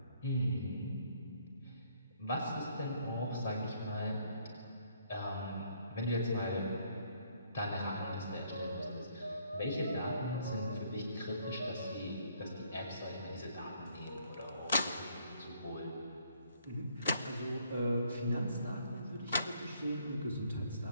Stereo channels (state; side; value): inverted; both; correlation -0.66